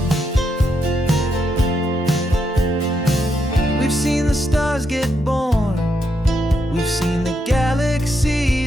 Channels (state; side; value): normal; both; correlation 0.80